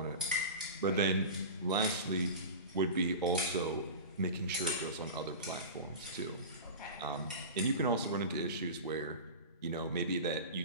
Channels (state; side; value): inverted; both; correlation -0.31